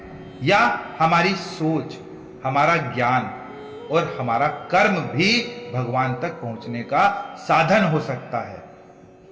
या हमारी सोच, हमारा ज्ञान और हमारा कर्म भी भगवान तक पहुंचने का साधन हो सकता है?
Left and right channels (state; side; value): identical; both; correlation 1.00